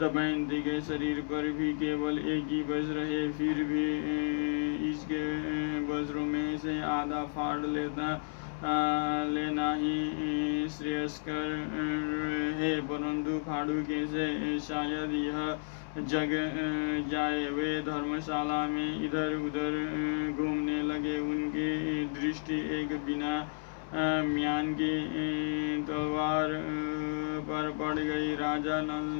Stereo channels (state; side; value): silent; right; digital silence